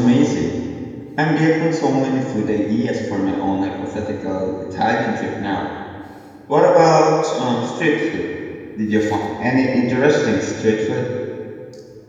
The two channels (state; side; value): identical; both; correlation 1.00